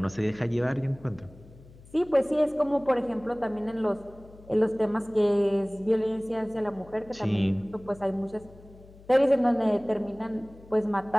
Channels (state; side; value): noise; left; hum, 22 dB below the sound